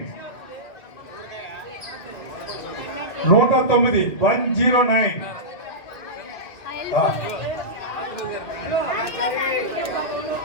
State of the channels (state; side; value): late; right; 2.3 ms